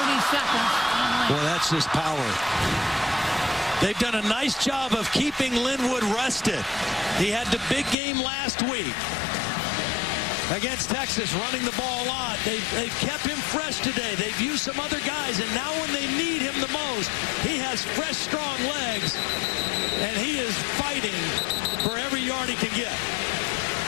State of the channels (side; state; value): right; drops out; at 8.0 s